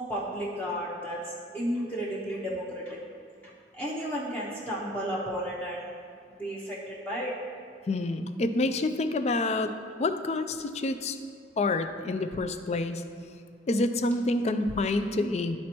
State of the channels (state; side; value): normal; both; correlation 0.51